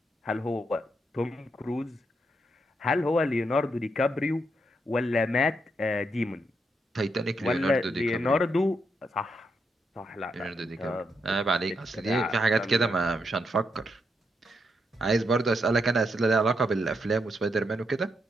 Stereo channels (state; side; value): normal; both; correlation 0.80